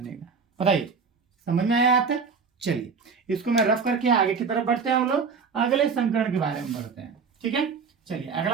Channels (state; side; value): quieter; left; 5.4 dB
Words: बताइए समझ में आया आता? चलिए इसको मैं रफ करके आगे की तरफ बढ़ते हैं, हम लोग अगले संकरण के बारे में बढ़ते हैं। ठीक है, चलिए